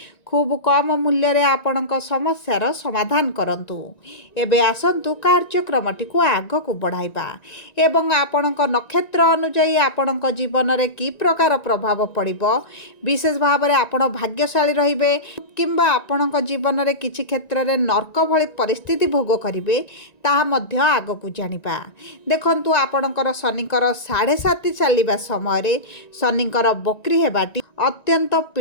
खूब कम मूल्य रे आपणक समस्यार समाधान करंतु। एबे आसंतु कार्यक्रमटी को आगकु बढ़ाइबा एवं आपणक नक्षत्र अनुଯାୟୀ आपणक जीवन रे की प्रकार प्रभाव पड़िबो, विशेष भाव रे आपण भाग्यशाली रहिबे किंबा आपणक जीवन रे किछि क्षेत्र रे नर्क भଳି परिस्थिति भोग करिवे ताहा मध्य आगकु जानिबा। देखंतु आपणकर शनिकर 7.5 चलिबा समय रे शनिकर बक्री हेबाटी अत्यंत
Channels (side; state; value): right; late; 1.9 ms